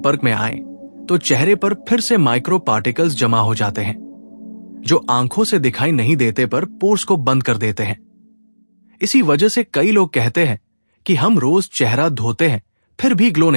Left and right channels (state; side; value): inverted; both; correlation -1.00